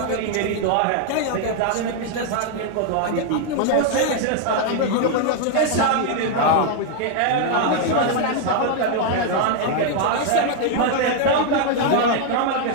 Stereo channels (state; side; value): different; both; correlation 0.00